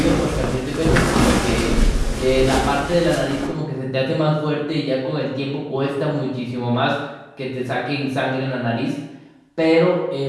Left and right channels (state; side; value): identical; both; correlation 1.00